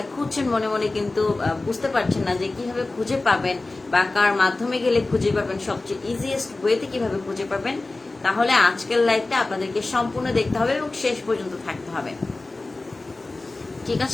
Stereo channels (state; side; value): quieter; right; 3.2 dB